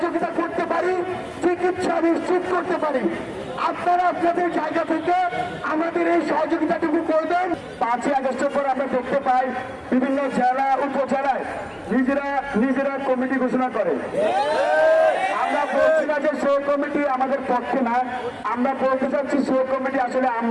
করতে পারি, চিকিৎসা নিশ্চিত করতে পারি। আপনারা আপনাদের জায়গা থেকে আমাদের এই সহযোগিতাটুকু করবেন। 5ই আগস্টের পর আমরা দেখতে পাই বিভিন্ন জেলা উপজেলায় নিজেরা কমিটি ঘোষণা করে। আমরা বলছি না যে সেই কমিটি আমাদের পক্ষে না, আমরা বলতে চাচ্ছি সেই কমিটি আসলে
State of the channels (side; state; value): both; identical; correlation 1.00